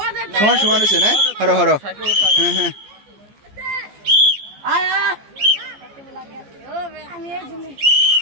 সমান সমান হয়েছে না, হরো হরো। হ্যাঁ হ্যাঁ,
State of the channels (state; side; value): late; left; 14 ms